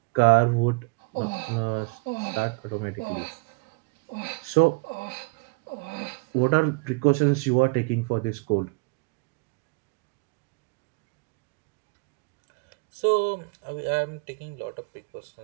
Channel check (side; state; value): left; quieter; 29.0 dB